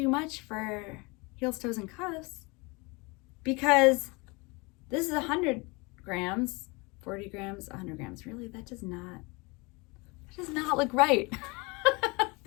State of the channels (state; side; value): quieter; right; 27.0 dB